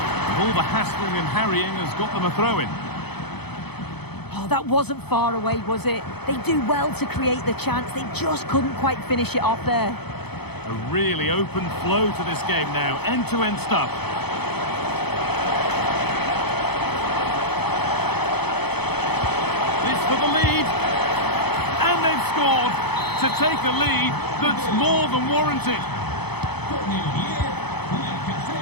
All the hassling and harrying has got them a throw-in. Oh, that wasn't far away, was it? They do well to create the chance. They just couldn't quite finish it off there. A really open flow to this game now. End-to-end stuff. This for the lead. And they've scored to take a lead that's more than warranted.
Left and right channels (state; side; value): late; right; 0.98 ms